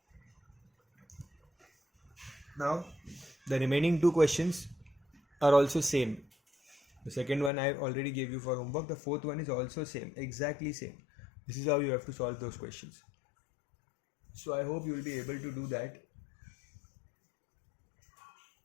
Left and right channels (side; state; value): right; drops out; at 7.5 s